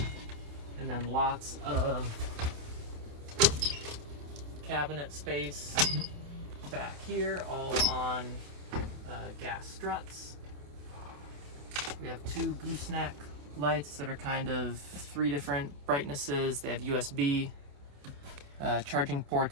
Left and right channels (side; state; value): left; late; 28 ms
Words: then lots of cabinet space back here, all on gas struts. We have two gooseneck lights that are kind of three different brightnesses. They have USB charging